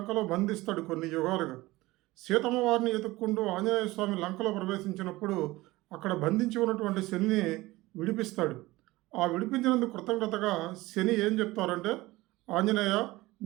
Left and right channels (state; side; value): quieter; left; 19.5 dB